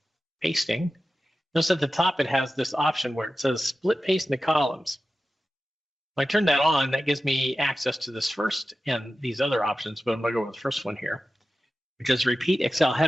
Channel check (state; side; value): normal; both; correlation 0.93